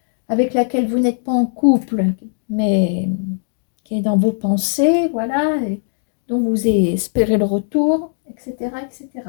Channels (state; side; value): silent; right; digital silence